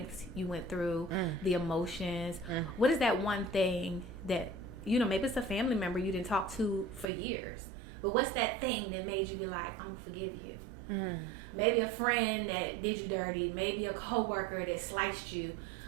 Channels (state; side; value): drops out; left; at 7.1 s